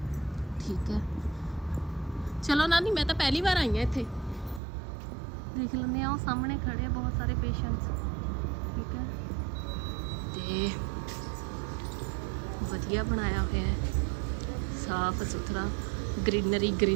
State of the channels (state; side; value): drops out; left; at 4.6 s